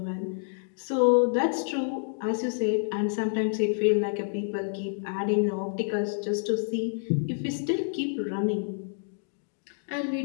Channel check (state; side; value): silent; right; digital silence